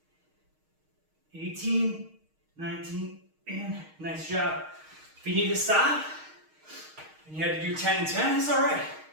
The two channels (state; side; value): late; left; 6.4 ms